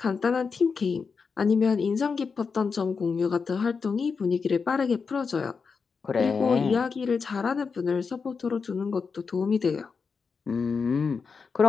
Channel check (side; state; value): right; quieter; 5.3 dB